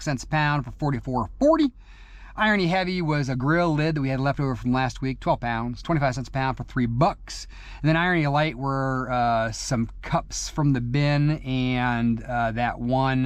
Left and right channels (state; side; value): identical; both; correlation 1.00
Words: cents a pound for $44.40. Irony Heavy was a grill lid that we had left over from last week, 12 pounds, 25 cents a pound for $3. And then Irony Light were some cups from the bin and that